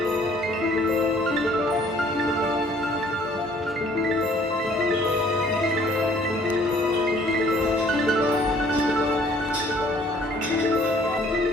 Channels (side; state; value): both; normal; correlation 0.58